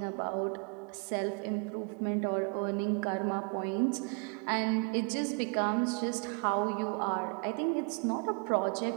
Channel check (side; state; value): left; quieter; 35.3 dB